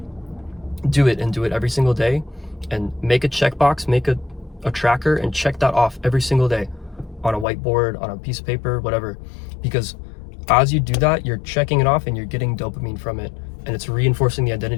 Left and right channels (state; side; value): drops out; right; at 7.5 s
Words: do it every single day, and make a checkbox, make a tracker, and check that off every single day on a whiteboard, on a piece of paper, whatever. Because as you do that, you're checking it off and you're getting dopamine from it, and it's reinforcing the